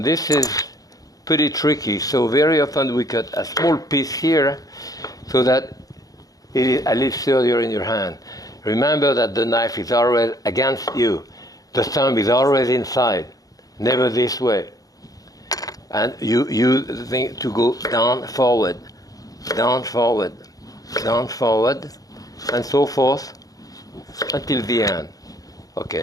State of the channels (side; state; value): right; late; 0.17 ms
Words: this is pretty tricky. So very often we cut a small piece here so that it is a little sturdier in your hand. Remember that the knife is always against you. The thumb is always inside, never this way. And you use the thing to go down, forward, down, forward, down, forward, and so forth until the end.